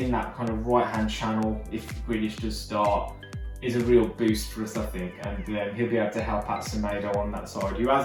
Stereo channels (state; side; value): identical; both; correlation 1.00